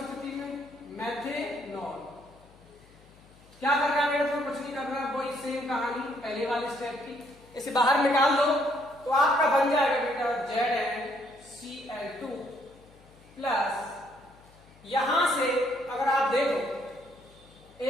में मैथेनॉल। क्या कर रहा है? तो कुछ नहीं कर रहा, वही सेम कहानी पहले वाले स्टेप की। इसे बाहर निकाल दो तो आपका बन जाएगा बेटा ZnCl2 प्लस यहां से अगर आप देखो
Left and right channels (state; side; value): noise; left; hum, 26 dB below the sound